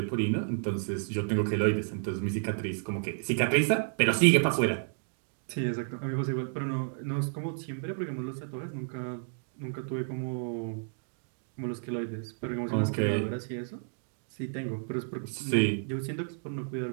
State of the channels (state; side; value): silent; left; digital silence